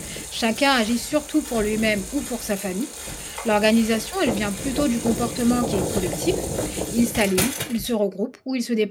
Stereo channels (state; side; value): identical; both; correlation 1.00